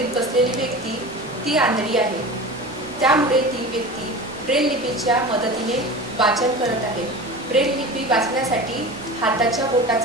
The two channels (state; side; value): normal; both; correlation 0.33